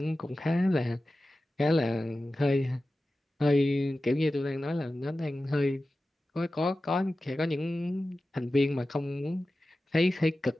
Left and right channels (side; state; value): both; normal; correlation 0.94